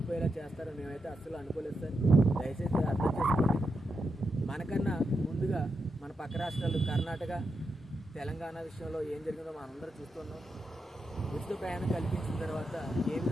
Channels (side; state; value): both; normal; correlation 0.86